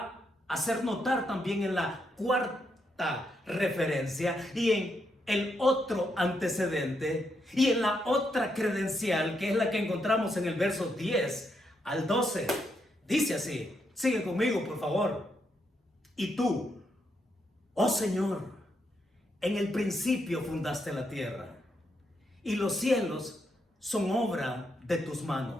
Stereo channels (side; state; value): both; normal; correlation 0.80